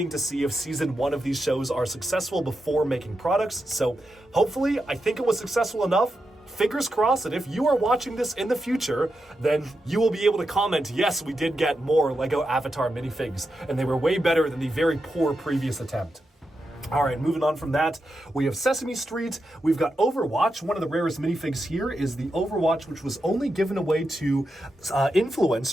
to see if Season 1 of these shows are successful before making products, so hopefully, I think it was successful enough. Fingers crossed that if you are watching this in the future, then you will be able to comment, yes, we did get more LEGO Avatar minifigs, and they were way better than the very poor previous attempt. All right, moving on from that, we have Sesame Street, we've got Overwatch. One of the rarest minifigs here is the Overwatch, which was only given away to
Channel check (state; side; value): normal; both; correlation 0.87